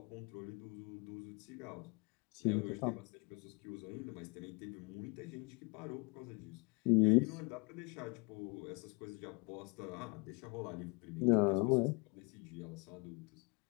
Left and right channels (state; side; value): quieter; right; 31.1 dB